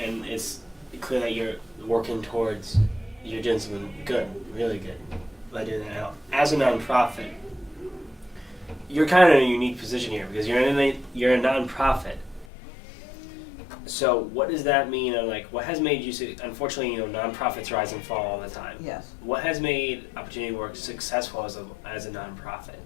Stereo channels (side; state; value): right; drops out; at 12.5 s